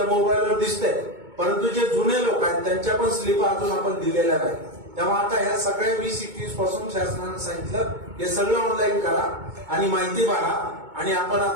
मोबाईलवर दिसतंय. परंतु जे जुने लोक आहेत त्यांच्या पण स्लिप अजून आपण दिलेल्या नाही. तेव्हा आता ह्या सगळ्या 20-21 पासून शासनानं सांगितलं हे सगळं ऑनलाईन करा आणि माहिती भरा. आणि आपण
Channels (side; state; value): left; late; 2.2 ms